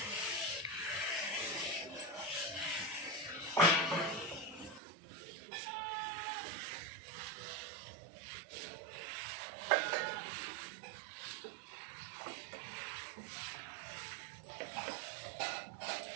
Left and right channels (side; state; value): left; drops out; at 4.8 s